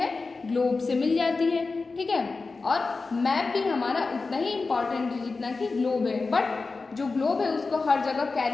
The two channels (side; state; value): right; quieter; 4.0 dB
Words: ग्लोब से मिल जाती है। ठीक है। और मैप भी हमारा उतना ही इम्पॉर्टेंट है जितना कि ग्लोब है, बट जो ग्लोब है उसको हर जगह